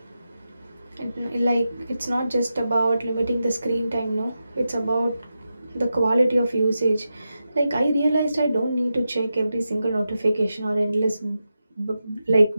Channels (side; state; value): both; inverted; correlation -0.90